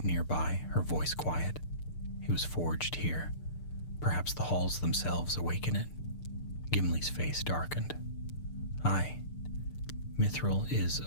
nearby, her voice quiet. It was forged here. Perhaps the halls themselves awaken it. Gimli's face darkened. "Aye, Mithril is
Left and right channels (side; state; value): right; late; 6.7 ms